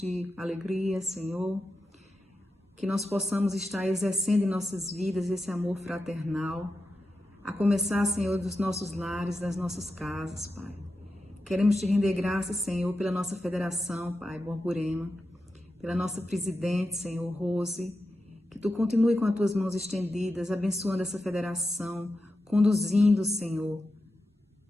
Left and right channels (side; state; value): both; normal; correlation 0.90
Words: alegria, Senhor. Que nós possamos estar exercendo em nossas vidas esse amor fraternal, a começar, Senhor, dos nossos lares, das nossas casas, Pai. Queremos te render graças, Senhor, pela nossa federação, Pai, Borborema, pela nossa presidente, Senhor, Rose, que tu continue com as tuas mãos estendidas, abençoando essa federação, conduzindo, Senhor.